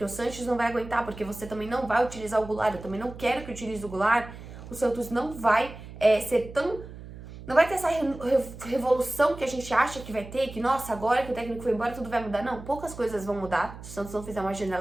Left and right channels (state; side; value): noise; right; hum, 14 dB below the sound